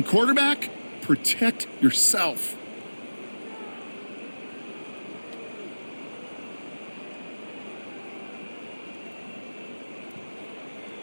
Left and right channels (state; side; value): inverted; both; correlation -1.00